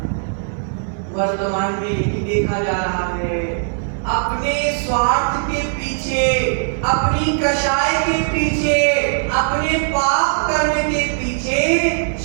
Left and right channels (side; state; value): left; silent; digital silence